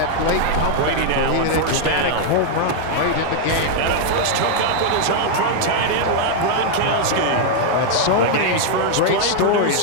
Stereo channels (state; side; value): different; both; correlation 0.00